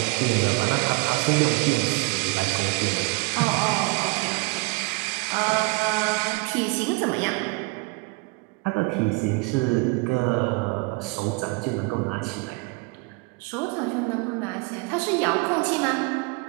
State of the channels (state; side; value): quieter; left; 27.4 dB